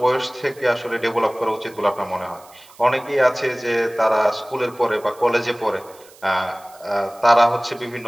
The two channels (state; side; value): noise; right; hiss, 25 dB below the sound